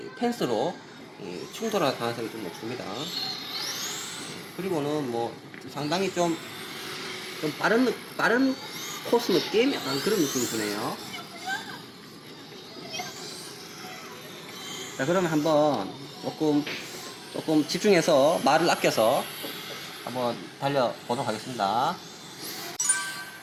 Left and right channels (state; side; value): identical; both; correlation 1.00